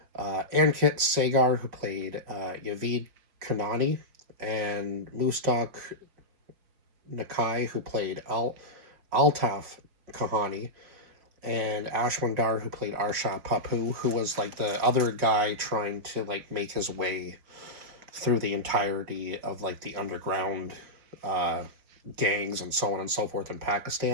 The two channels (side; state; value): left; late; 5.1 ms